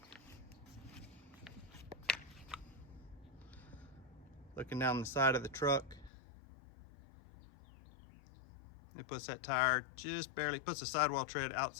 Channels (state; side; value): drops out; right; at 6.1 s